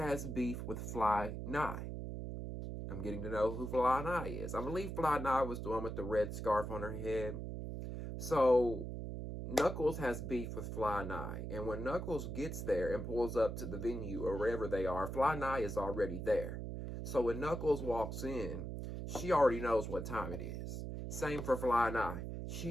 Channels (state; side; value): noise; right; hum, 5 dB below the sound